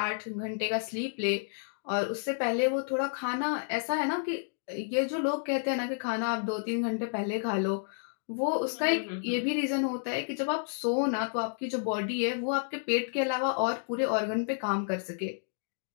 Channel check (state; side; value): silent; right; digital silence